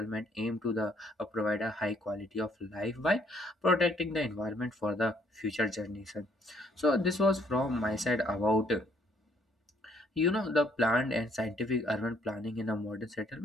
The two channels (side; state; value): both; normal; correlation 0.65